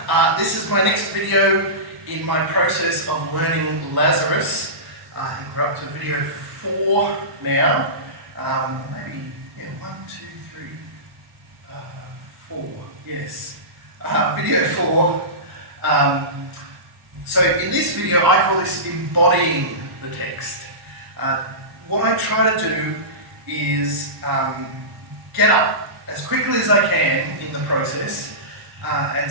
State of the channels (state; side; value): late; left; 1.0 ms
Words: This is my next video in my process of learning Lazarus. I think we're up to video 4 now. Maybe, 4, yes. Video 4. So in this video I call this embodying the text. What I try to do is get up as quickly as I can in the process